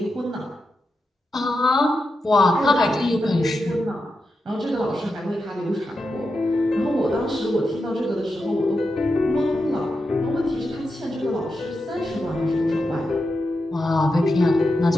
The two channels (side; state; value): both; normal; correlation 0.88